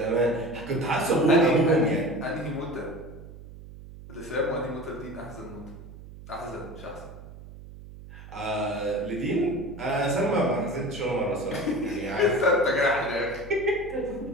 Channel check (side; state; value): right; noise; hum, 16 dB below the sound